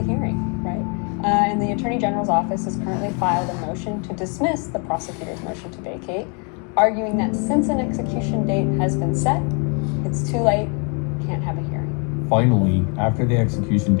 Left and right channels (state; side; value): quieter; right; 36.9 dB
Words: hearing, right? And the Attorney General's office has currently filed a motion to dismiss the prosecutor's motion to vacate, arguing that since an execution date has been set, it's too late, can't have a hearing. Finally, after the execution